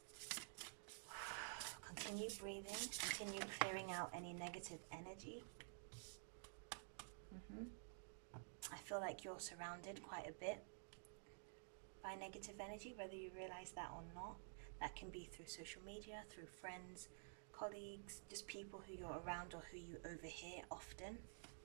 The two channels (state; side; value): silent; left; digital silence